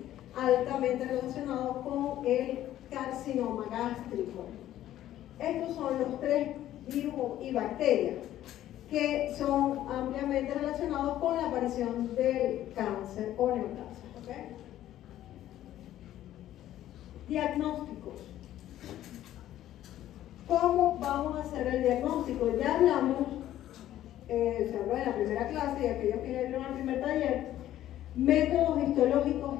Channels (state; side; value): quieter; right; 12.9 dB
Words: altamente relacionado con el carcinoma gástrico. Estos son los tres virus y bacterias que son ampliamente relacionados con la aparición del cáncer o neoplasia. ¿Okay? Diagnósticos. ¿Cómo vamos a hacer el diagnóstico? Ya hablamos, se habló en la primera clase y aquellos que vieron el primer taller, métodos histológicos